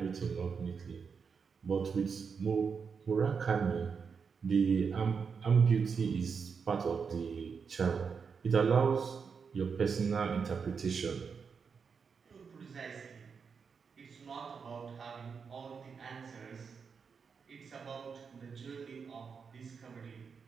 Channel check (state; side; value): quieter; left; 5.9 dB